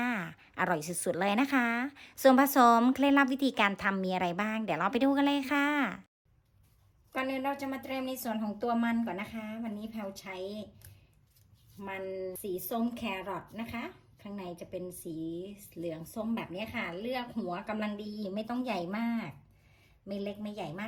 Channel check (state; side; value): identical; both; correlation 1.00